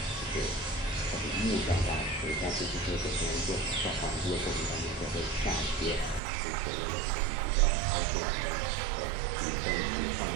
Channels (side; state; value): left; drops out; at 6.2 s